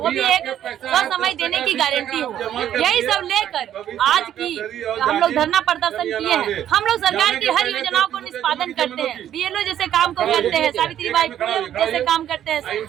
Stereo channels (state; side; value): quieter; left; 10.8 dB